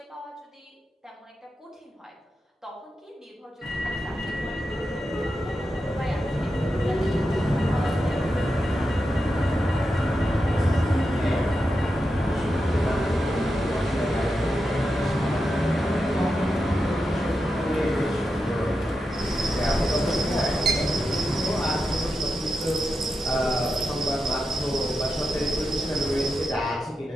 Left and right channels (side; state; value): both; normal; correlation 0.88